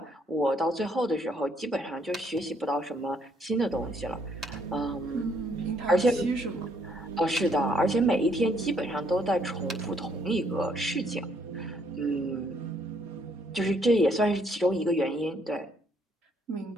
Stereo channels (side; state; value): both; normal; correlation 0.69